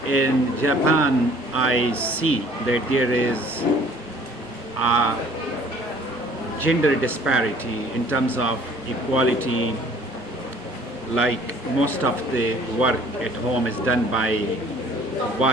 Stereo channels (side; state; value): both; normal; correlation 0.54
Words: in Japan I see that there is a gender disparity in terms of equality. Like most of the work at home is done by